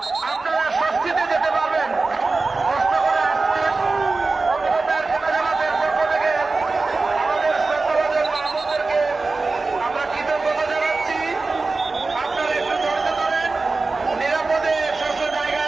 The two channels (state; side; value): quieter; left; 3.7 dB